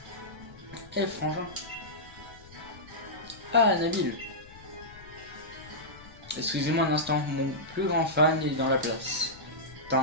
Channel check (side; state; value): left; noise; rumble, 20 dB below the sound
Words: Eh frangin. Ah Nabil. Excusez-moi un instant, mon plus grand fan est dans la place. T'as